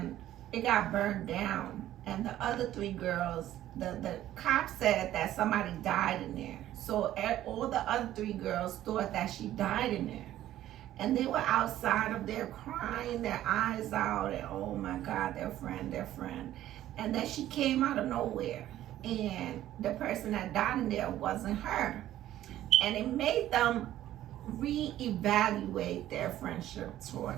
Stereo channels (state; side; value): quieter; left; 13.2 dB